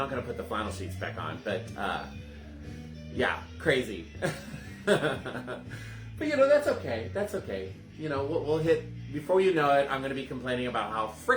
going to put the flannel sheets back on, but yeah, crazy. But you know, that's okay. That's okay. You know, we'll hit, before you know it, I'm going to be complaining about how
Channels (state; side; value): identical; both; correlation 1.00